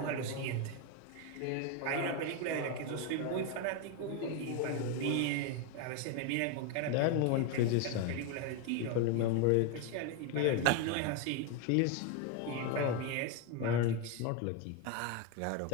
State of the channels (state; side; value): different; both; correlation 0.02